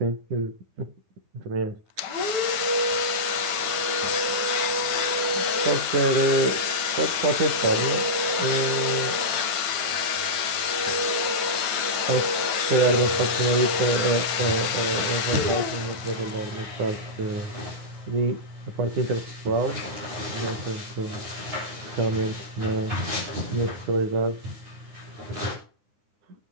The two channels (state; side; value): late; left; 9.7 ms